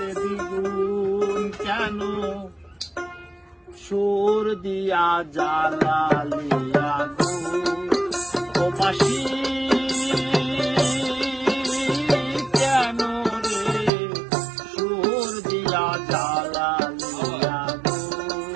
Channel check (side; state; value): left; drops out; at 13.9 s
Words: দ্বিগুণ কেন সুর দিয়া জ্বালালিয়া গো ও বাসি কেন রে সুর দিয়া জ্বালালিয়া গো